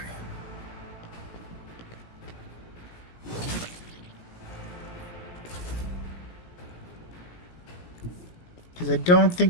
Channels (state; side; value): late; right; 17 ms